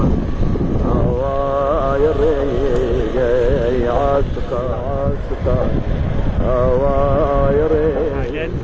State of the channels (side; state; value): both; identical; correlation 1.00